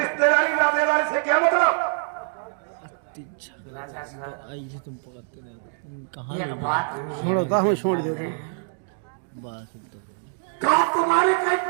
नातेदारी से क्या मतलब? राजा साहब, आई से तुम पकड़ते नहीं, कहाँ ये ले बात हम छोड़ो, कहाँ में छोड़ दो। बस क्या तुम्हारे कई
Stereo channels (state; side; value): silent; left; digital silence